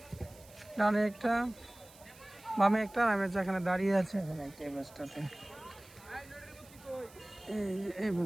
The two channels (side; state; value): right; noise; hiss, 23 dB below the sound